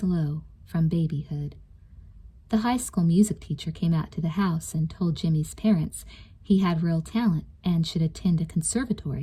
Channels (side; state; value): both; identical; correlation 1.00